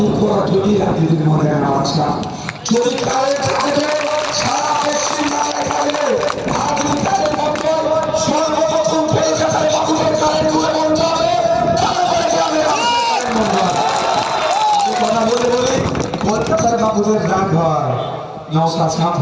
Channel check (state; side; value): identical; both; correlation 1.00